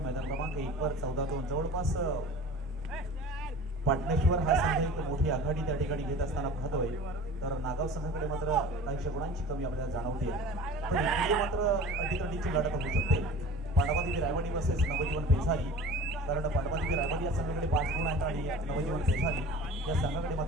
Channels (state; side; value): normal; both; correlation 0.40